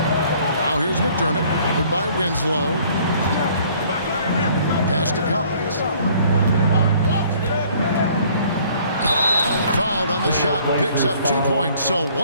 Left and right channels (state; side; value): inverted; both; correlation -0.58